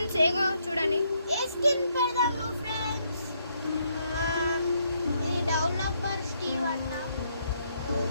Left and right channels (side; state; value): both; inverted; correlation -0.74